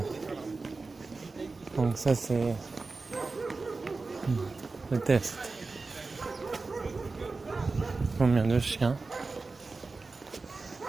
Donc ça c'est le test. Combien de chiens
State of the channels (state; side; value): quieter; left; 3.9 dB